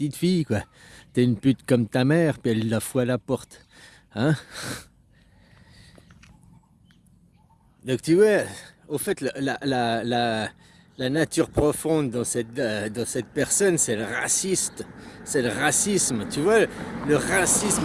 quoi. T'es une pute comme ta mère, puis elle la fout à la porte. Hein? Donc tu vois, au fait, la nature profonde dans cette personne, c'est le raciste. C'est le racisme, tu vois, le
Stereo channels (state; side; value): identical; both; correlation 1.00